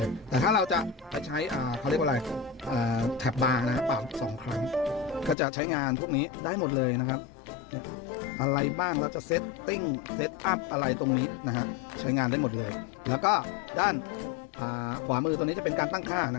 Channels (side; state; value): right; drops out; at 5.4 s